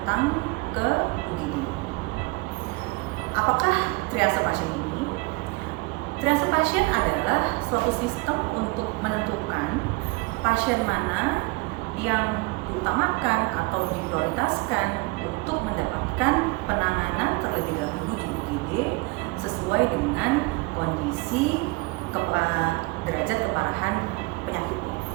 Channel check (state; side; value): quieter; left; 25.8 dB